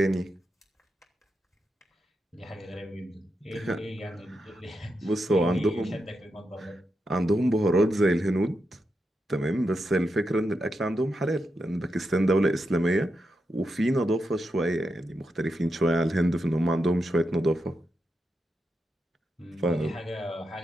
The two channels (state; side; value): normal; both; correlation 0.86